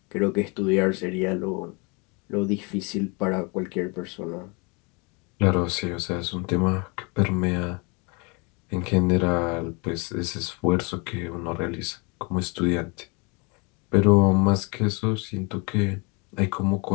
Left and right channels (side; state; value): right; quieter; 30.4 dB